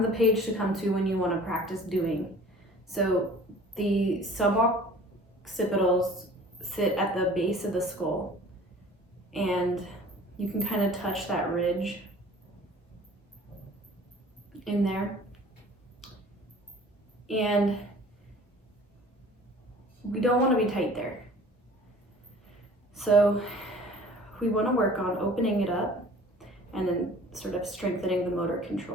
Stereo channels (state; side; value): normal; both; correlation 0.47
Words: the page to come to when you want to practice doing. So the suboccipitals sit at the base of the skull, and you can kind of touch that ridge in there. And we don't want to be tight there. So we want to work on opening it up and then sort of strengthening the motor